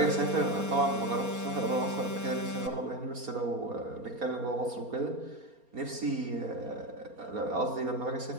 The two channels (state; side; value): late; left; 4.3 ms